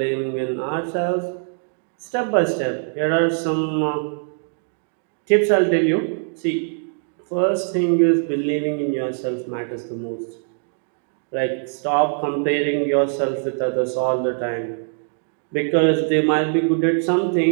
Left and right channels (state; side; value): silent; left; 64 dB below the other